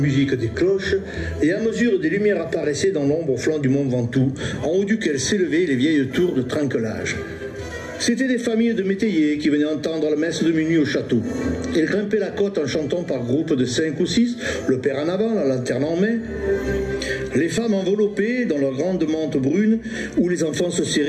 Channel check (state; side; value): identical; both; correlation 1.00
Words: des cloches, et à mesure des lumières apparaissaient dans l'ombre au flanc du mont Ventoux, en haut duquel s'élevaient les vieilles tours de Trinquelage. C'étaient des familles de métayers qui venaient entendre la messe de minuit au château. Ils grimpaient la côte en chantant par groupes de 5 ou 6, le père en avant, la lanterne en main. Les femmes enveloppées dans leurs grandes mantes brunes, où les enfants se